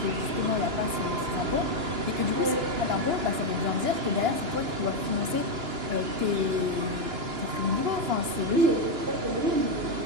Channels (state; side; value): late; left; 2.9 ms